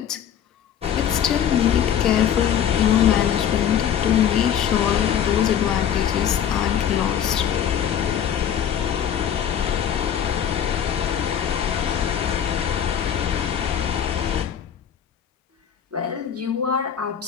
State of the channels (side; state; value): right; quieter; 9.2 dB